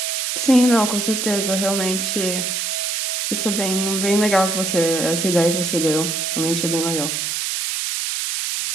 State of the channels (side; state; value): right; noise; hiss, 1 dB below the sound